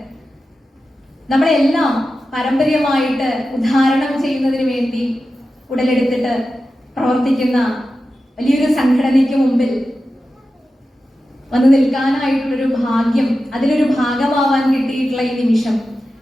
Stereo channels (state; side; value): normal; both; correlation 0.92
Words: നമ്മളെല്ലാം പാരമ്പര്യമായിട്ട് ഉദ്ധാരണം ചെയ്യുന്നതിന് വേണ്ടി ഉടലെടുത്തിട്ട് പ്രവർത്തിക്കുന്ന വലിയൊരു സംഘടനയ്ക്ക് മുമ്പിൽ വന്നു നിൽക്കാനായിട്ടുള്ളൊരു ഭാഗ്യം, അതിലൊരു ഭാഗമാവാൻ കിട്ടിയിട്ടുള്ള ഈ നിമിഷം